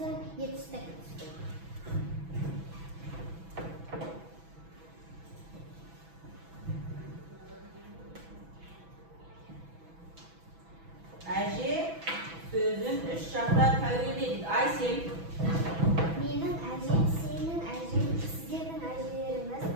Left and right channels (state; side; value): late; left; 6.1 ms